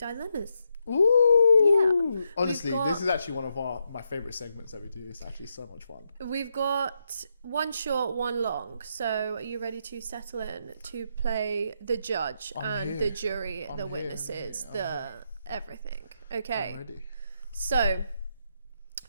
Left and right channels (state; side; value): inverted; both; correlation -0.81